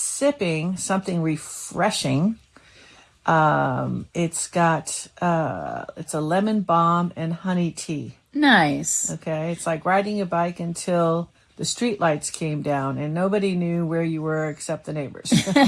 something refreshing. It's a lemon balm and honey tea. Nice. Okay, it's like riding a bike until the street lights came down and nobody knew where you were except the neighbors.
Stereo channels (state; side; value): identical; both; correlation 1.00